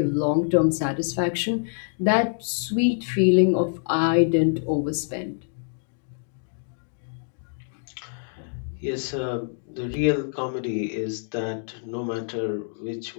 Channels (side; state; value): right; silent; digital silence